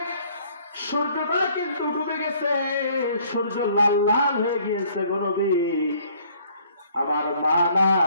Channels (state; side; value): inverted; both; correlation -0.60